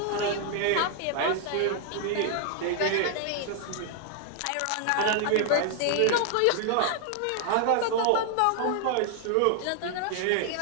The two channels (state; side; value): different; both; correlation 0.00